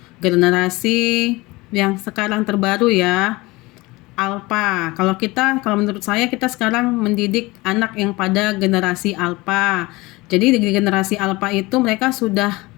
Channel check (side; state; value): right; quieter; 21.9 dB